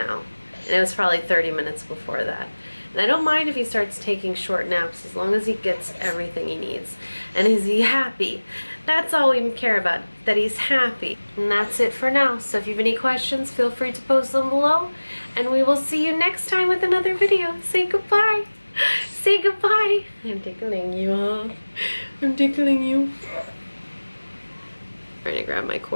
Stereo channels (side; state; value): both; inverted; correlation -1.00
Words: and it was probably 30 minutes before that. And I don't mind if he starts taking short naps as long as he gets everything he needs. And is he happy? That's all we care about, that he's happy. And that's it for now. So if you have any questions, feel free to post them below, and we will see you next time with another video. Say goodbye. Say goodbye. I'm tickling you, huh? I'm tickling you. I'm trying to grab my